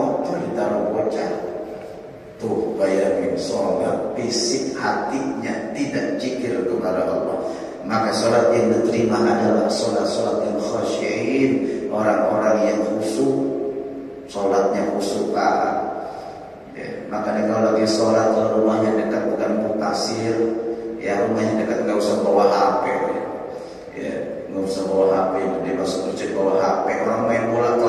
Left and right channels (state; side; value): identical; both; correlation 1.00